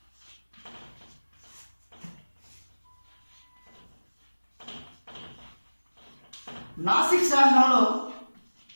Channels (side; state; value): both; inverted; correlation -1.00